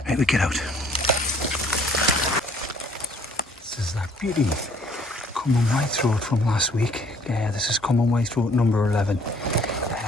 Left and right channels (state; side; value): normal; both; correlation 0.59